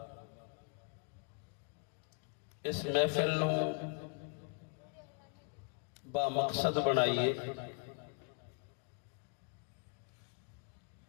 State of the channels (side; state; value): right; quieter; 39.9 dB